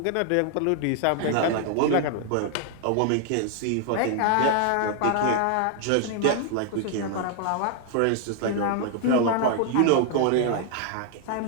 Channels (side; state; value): both; different; correlation 0.00